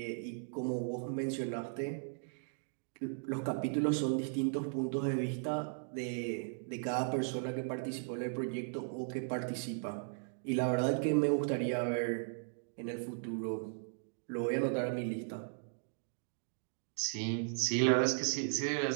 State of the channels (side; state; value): left; silent; digital silence